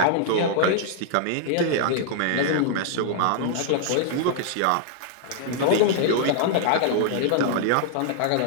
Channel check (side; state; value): both; different; correlation -0.01